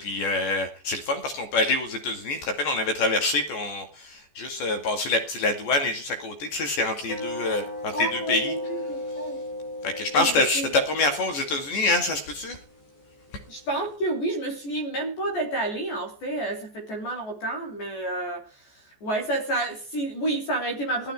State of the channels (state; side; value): late; right; 14 ms